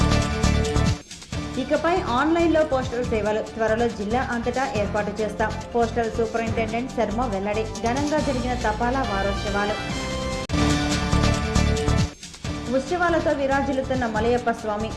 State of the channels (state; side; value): identical; both; correlation 1.00